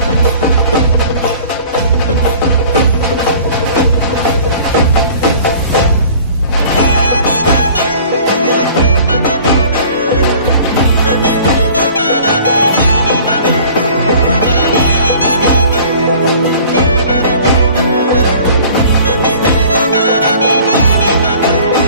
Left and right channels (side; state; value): both; inverted; correlation -0.48